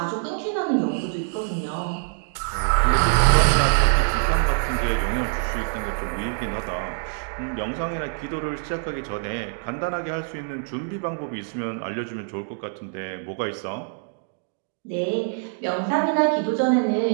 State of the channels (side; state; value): left; silent; digital silence